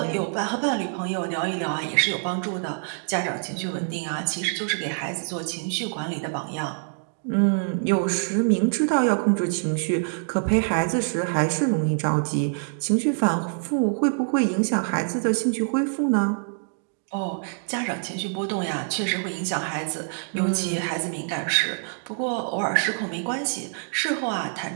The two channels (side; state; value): left; silent; digital silence